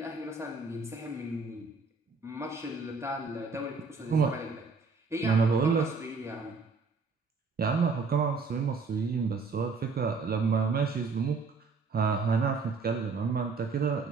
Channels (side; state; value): left; quieter; 4.4 dB